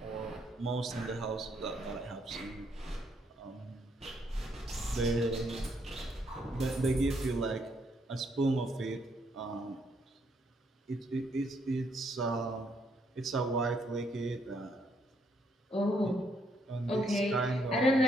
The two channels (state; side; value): normal; both; correlation 0.73